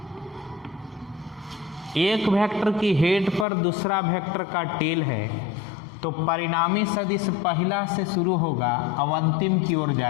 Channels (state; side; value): drops out; right; at 3.5 s